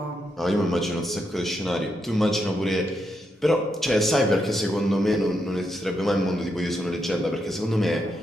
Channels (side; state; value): both; normal; correlation 0.82